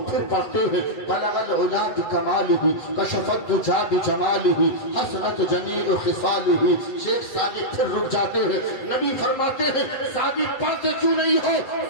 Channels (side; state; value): right; late; 8.0 ms